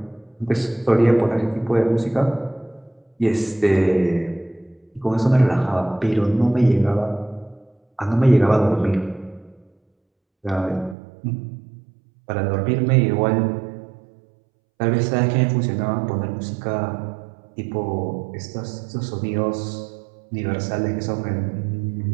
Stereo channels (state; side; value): drops out; left; at 11.0 s